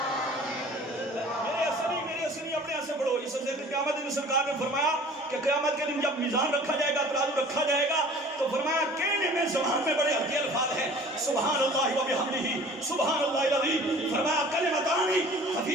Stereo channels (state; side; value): normal; both; correlation 0.47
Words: सरकार ने फरमाया कि क़यामत के दिन जब मीज़ान रखा जाएगा, तराजू रखा जाएगा, तो फरमाया कहने में ज़बान में बड़े हल्के अल्फाज हैं, सुभान अल्लाह व बिहम्दिही सुभान अल्लाहिल अज़ीम। फरमाया कलिमतानी